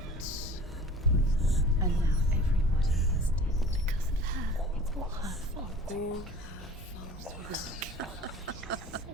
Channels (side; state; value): both; normal; correlation 0.43